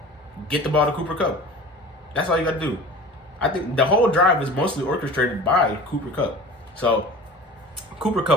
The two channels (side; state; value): both; normal; correlation 0.39